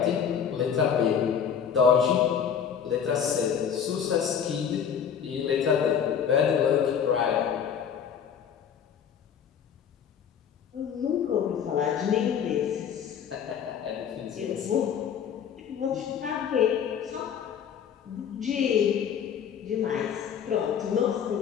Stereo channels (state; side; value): quieter; right; 7.9 dB